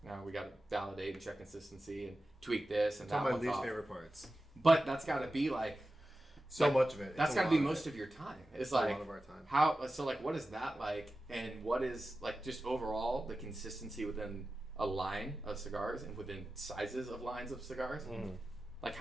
Now we got to validate and check consistency and tweak this and it's that. One of my least off. favorite parts. But that's got to be so much of it. That's got to be most of your time. It's a lot of our time. What is that like? And what is just overall the consistency within a line of cigars and within sizes of lines of cigars? Mm.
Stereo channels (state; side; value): normal; both; correlation 0.94